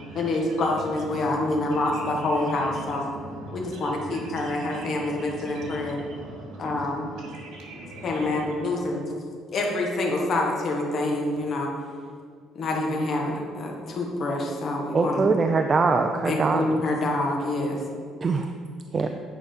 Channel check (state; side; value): normal; both; correlation 0.72